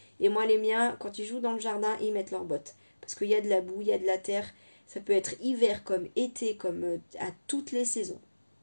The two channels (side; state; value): both; inverted; correlation -1.00